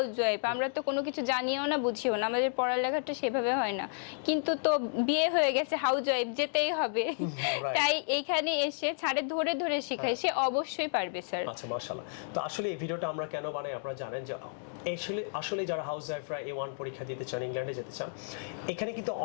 ওয়াইফ, আমরা তো কোনো কিছু জানিও না বুঝিও না, আমাদের পড়ালেখাটা সেভাবে হয় না, কিন্তু তো বিয়ে হয়ে গেছে, হাউস ওয়াইফ যেতেই হবে, right. তাই এখানে এসে ছাড়ে ধরে ধরে শেখায়, সে অবশ্যই পারবে স্যার। আচ্ছা, মাশাআল্লাহ। তো আসলে এই ভিডিওটা আমরা কেন বানাই আপনারা জানেন যে আসলে যারা হাউস ওয়াইফরা A1 পরীক্ষা দিতে চান, ইংল্যান্ডে যেতে চান, এখানে কিন্তু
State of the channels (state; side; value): silent; right; digital silence